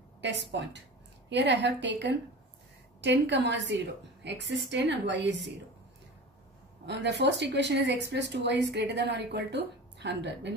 test point. Here I have taken 10, 0. X is 10 and y is 0. The first equation is x plus 2y is greater than or equal to 100. When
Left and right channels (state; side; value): normal; both; correlation 0.34